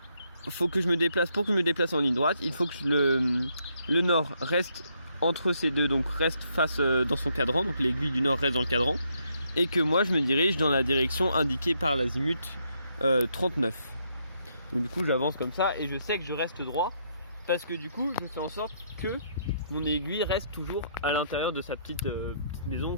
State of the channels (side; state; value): both; inverted; correlation -0.74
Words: faut que je me déplace, pour que je me déplace en ligne droite, il faut que le nord reste entre ces deux, donc reste face dans son cadran, donc l'aiguille du nord reste dans le cadran, et que moi je me dirige dans la direction indiquée par l'azimut 39. Donc du coup j'avance comme ça et je sais que je reste droit parce que du coup je fais en sorte que mon aiguille reste toujours à l'intérieur de sa petite maison,